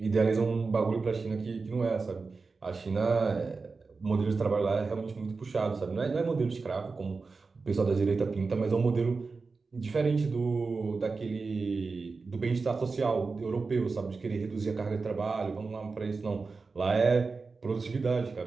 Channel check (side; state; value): left; quieter; 4.3 dB